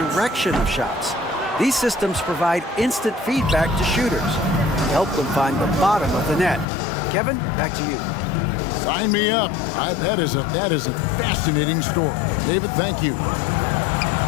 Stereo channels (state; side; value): drops out; right; at 6.7 s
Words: of shots. These systems provide instant feedback to shooters and help them find the bottom of the net. Kevin, back to you. Sign me up. That is a fascinating story. David, thank you.